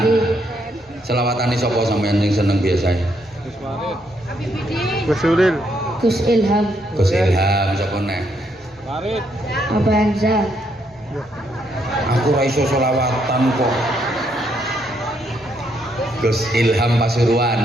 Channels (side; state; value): both; normal; correlation 0.75